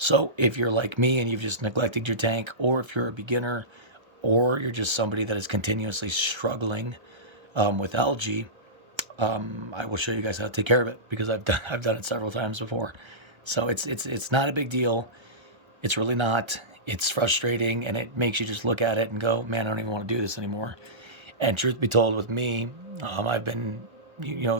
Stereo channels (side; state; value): left; late; 1.3 ms